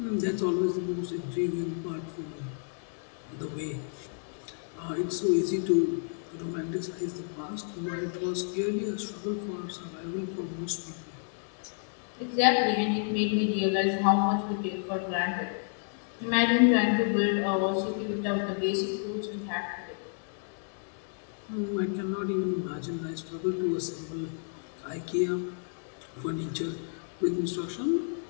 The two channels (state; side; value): silent; right; 57 dB below the other